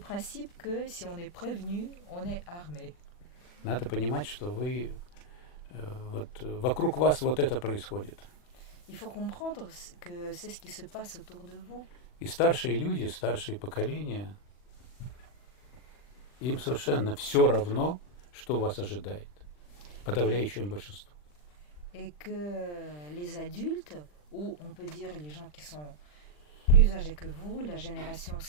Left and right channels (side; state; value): right; late; 40 ms